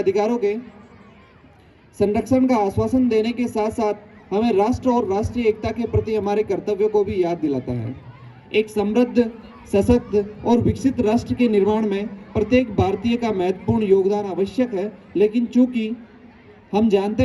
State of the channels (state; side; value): identical; both; correlation 1.00